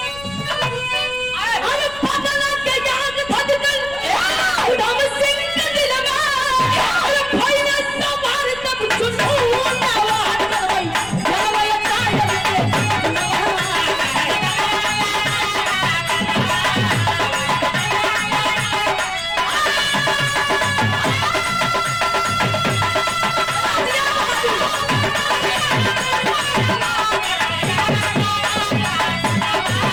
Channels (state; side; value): noise; left; rumble, 17 dB below the sound